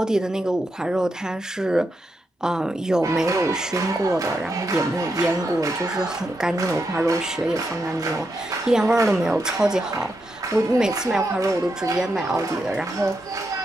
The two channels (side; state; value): both; normal; correlation 0.84